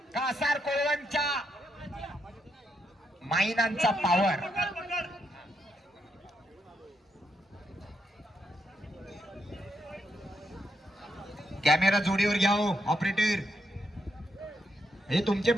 कासार कोळवणच्या माईनांचा पावर. कॅमेरा जोडीवर घ्या हो ऑपरेटर. हे तुमचे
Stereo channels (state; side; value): normal; both; correlation 0.79